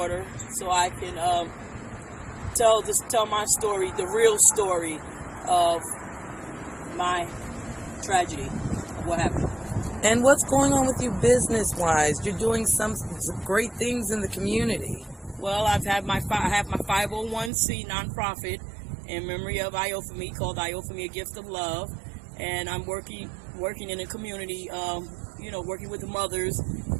so I can tell my story, the real story of my tragedy of what happened. And what's going on with you business-wise? You're doing some great things in the community. Well, I have my 501c nonprofit in memory of Iophemy called Iophemy: A Gift of Love, and I'm working in the community, working with the mothers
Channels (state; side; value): drops out; left; at 17.5 s